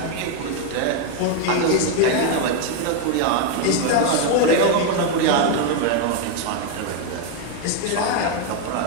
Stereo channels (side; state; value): both; different; correlation 0.01